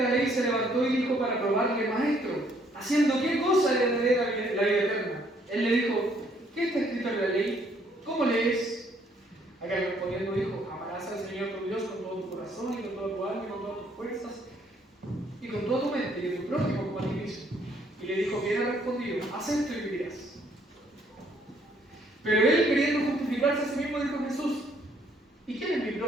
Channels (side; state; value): both; normal; correlation 0.66